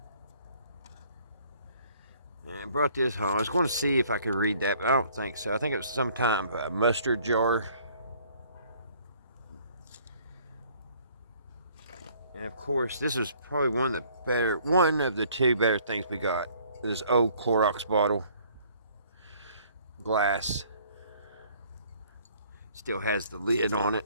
And I brought this home. I was going to see if I could read that, but I don't think so. I think it was some kind of a mustard jar. And of course, this is probably one of the two better things we got. This old Clorox bottle. Glass. Still has the lid on it.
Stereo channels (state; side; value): inverted; both; correlation -0.59